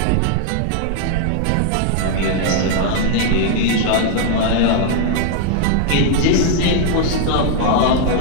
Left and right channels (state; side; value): different; both; correlation 0.00